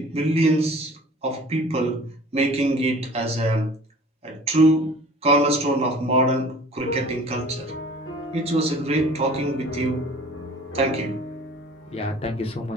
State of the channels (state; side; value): normal; both; correlation 0.47